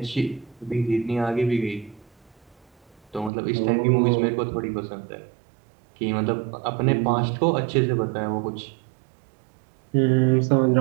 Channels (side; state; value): left; drops out; at 3.3 s